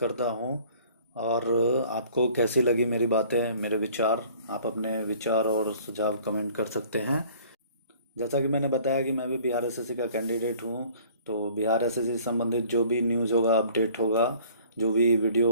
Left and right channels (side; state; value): both; inverted; correlation -0.53